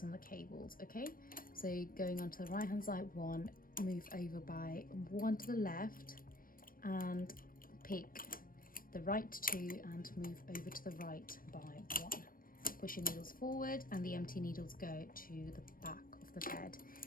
on the cables. Okay, so going on to the right hand side 1, move over by 1 to the left and pick the right 2 and move over to the right by 1. Push your needles forward and the empty needles go to the back of of the bed.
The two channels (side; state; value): right; late; 0.41 ms